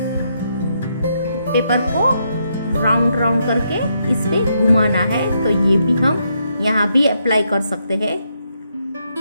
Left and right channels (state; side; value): inverted; both; correlation -0.78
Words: पेपर को राउंड राउंड करके इस पे घुमाना है, तो ये भी हम यहाँ भी अप्लाई कर सकते हैं।